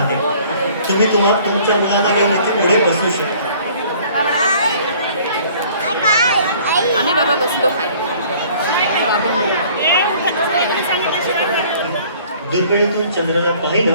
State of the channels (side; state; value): both; inverted; correlation -0.54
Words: तुम्ही तुमच्या मुलांना घेऊन इथे पुढे बसू शकता. आम्ही बाबा बसलो खाली. दुर्बिणीतून चंद्राला